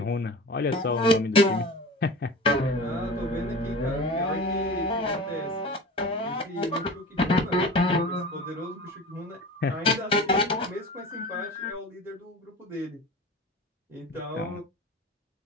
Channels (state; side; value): normal; both; correlation 0.34